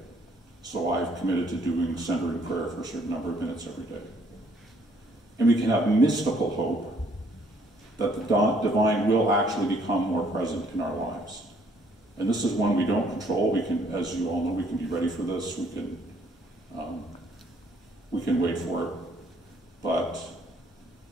So I've committed to doing centering prayer for a certain number of minutes every day. And we can have mystical hope that the divine will actually become more present in our lives. And this is one we don't control. We can, as you all know, we can be ready for this. We can wait for it. But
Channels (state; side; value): normal; both; correlation 0.64